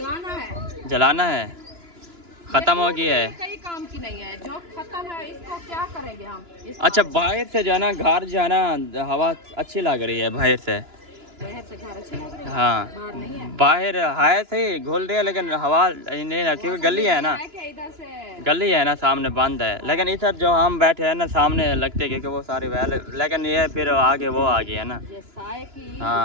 जलाना है, ख़त्म हो गई है। कई काम की नहीं है, जो खत्म है इसको क्या करेंगे हम? अच्छा बाहर से जो है ना घर जो है ना हवा अच्छी लग रही है बाहर से। बाहर से घर अच्छे लग रहे हैं। हाँ बाहर नहीं है। बाहर है सही घुल रही है, लेकिन हवा नहीं है, क्योंकि गली है ना, इधर से गली है ना सामने बंद है। लेकिन इधर जो हम बैठे हैं ना सामने लगते हैं, क्योंकि वो सारे वैल, लेकिन ये फिर आगे वो आ गई है ना। ये साए की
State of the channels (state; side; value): late; left; 2.9 ms